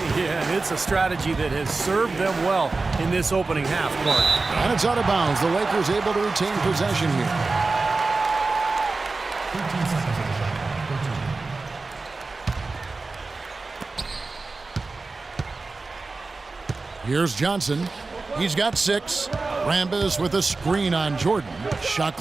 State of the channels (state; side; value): quieter; left; 3.7 dB